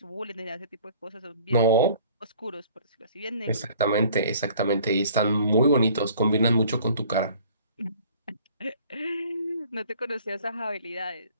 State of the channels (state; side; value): inverted; both; correlation -0.53